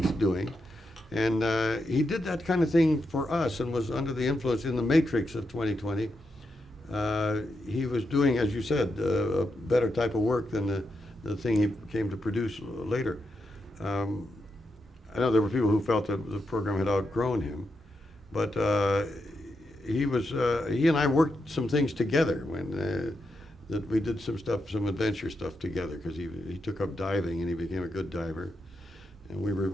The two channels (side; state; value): both; normal; correlation 0.84